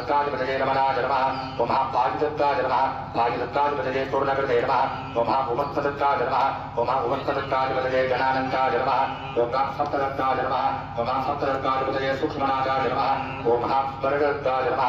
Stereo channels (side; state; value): both; identical; correlation 1.00